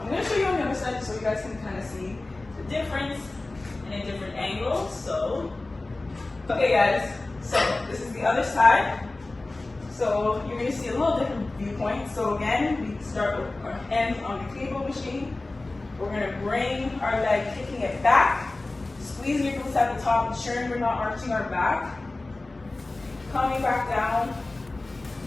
I'm going to show you on the other side so you guys can kind of see the difference in a different angle. So, okay guys, so this is the other side. So you're going to see a little different viewpoint. So again, we start with our hands on the cable machine. We're going to bring our leg, kicking it back, squeezing your glutes at the top, ensuring we're not arching our back. Coming back down,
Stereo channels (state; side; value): quieter; right; 3.1 dB